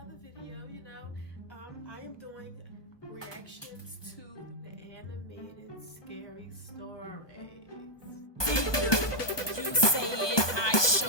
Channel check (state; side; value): late; right; 1.2 ms